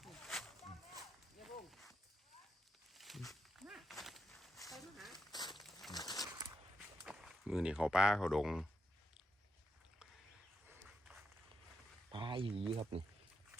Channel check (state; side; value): normal; both; correlation 0.83